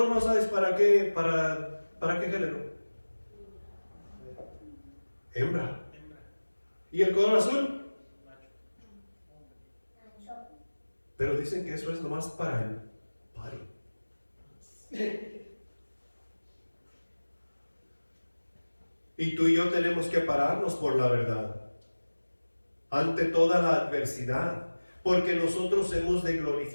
rosa es para qué? ¿Para qué género? Hembra. ¿Y el color azul? Pero dicen que eso es nomás para el party. Y tú y yo tenemos que pararnos por la verdad ante toda la adversidad, porque nosotros hemos de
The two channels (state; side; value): inverted; both; correlation -1.00